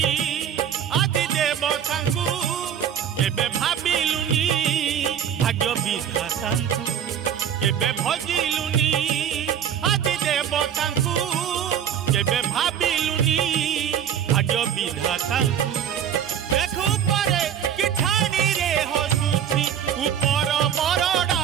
আদি দেবতাঙ্কু এবে ভাবিলুনি ভাগ্য বিধাতাঙ্কু এবে ভজিলুনি আদি দেবতাঙ্কু এবে ভাবিলুনি ভাগ্য বিধাতাঙ্কু দেখু পরে কি ঠানি রে হসুছি উপর বরডা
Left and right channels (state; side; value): quieter; left; 9.0 dB